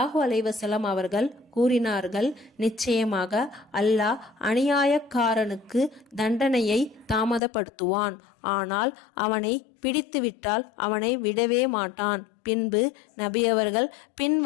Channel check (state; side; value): drops out; right; at 7.4 s